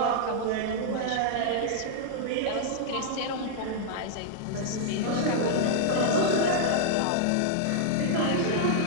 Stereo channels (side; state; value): both; different; correlation -0.01